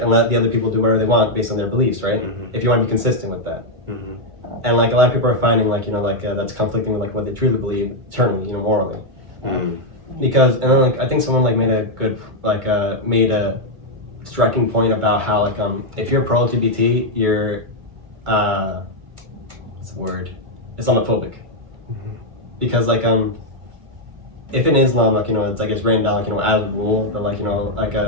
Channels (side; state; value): left; late; 2.2 ms